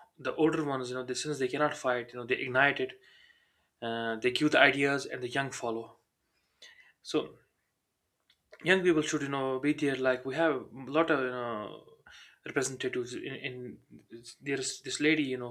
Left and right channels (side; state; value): both; identical; correlation 1.00